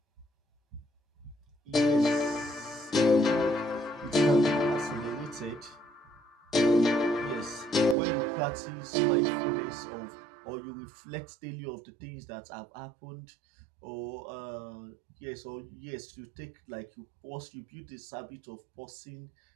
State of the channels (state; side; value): drops out; left; at 8.0 s